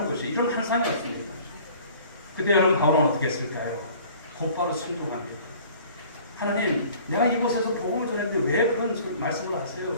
것이, 이런 환상이었습니다. 그때 여러분 바울은 어떻게 했을까요? 곧바로 순종합니다. 하나님, 내가 이곳에서 복음을 전했는데 왜 그런 말씀을 하세요?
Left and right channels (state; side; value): inverted; both; correlation -0.49